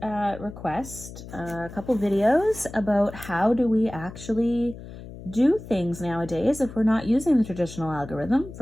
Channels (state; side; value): noise; left; hum, 14 dB below the sound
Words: request a couple videos about how do we actually do things nowadays if we're not using the traditional algorithm